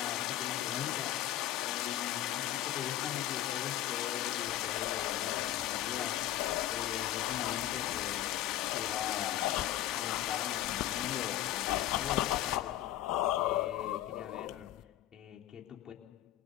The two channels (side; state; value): right; quieter; 13.3 dB